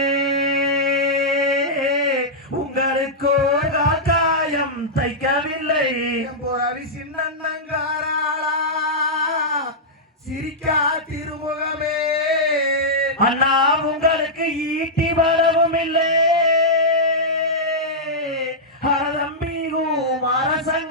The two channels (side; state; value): both; normal; correlation -0.10